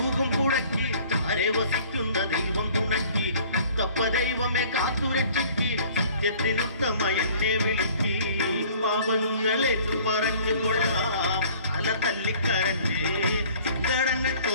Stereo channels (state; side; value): inverted; both; correlation -0.52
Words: പുഴയ്ക്ക് ചാരെ വസിക്കുന്ന ദൈവം തുണക്കി. മുത്തപ്പ ദൈവമേ കാത്തുരക്ഷിക്ക്, സത്യത്തിനുത്തമ എന്നെ വിളിക്ക്. പാപങ്ങളേറ്റു പറഞ്ഞു കൊള്ളാം അല തല്ലിക്കരഞ്ഞ്, സങ്കടങ്ങൾ